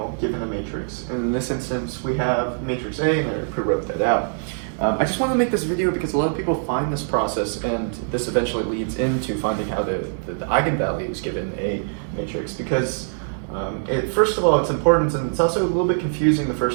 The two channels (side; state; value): left; silent; digital silence